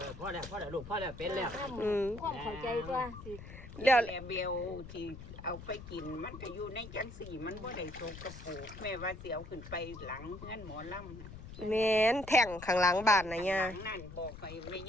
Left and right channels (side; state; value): left; noise; rumble, 13 dB below the sound